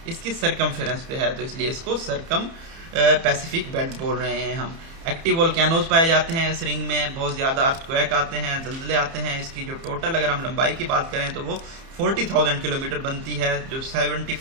इसकी सरकमफेरेंस पे है, तो इसलिए इसको सरकम पैसिफिक बेल्ट बोल रहे हैं हम। एक्टिव वोल्केनोज पाए जाते हैं इस रिंग में, बहुत ज़्यादा अर्थक्वेक आते हैं, ज़लज़ले आते हैं। इसकी जो टोटल अगर हम लंबाई की बात करें तो वो 40,000 किलोमीटर बनती है। जो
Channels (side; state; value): left; late; 30 ms